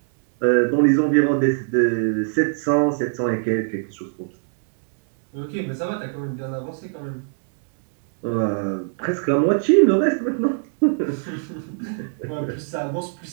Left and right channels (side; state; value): left; silent; digital silence